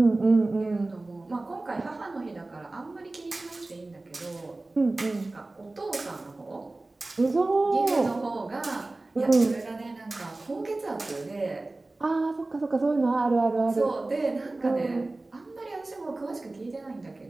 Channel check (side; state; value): left; quieter; 3.0 dB